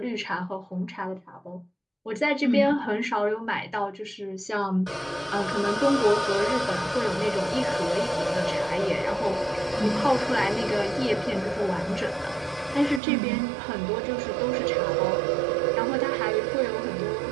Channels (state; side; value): drops out; left; at 13.0 s